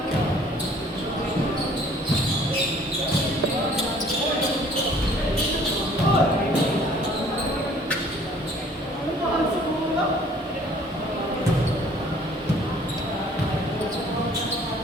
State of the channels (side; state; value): both; normal; correlation 0.55